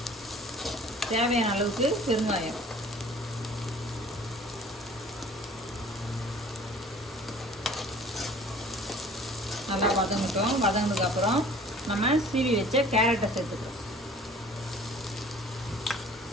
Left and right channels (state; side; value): normal; both; correlation 0.49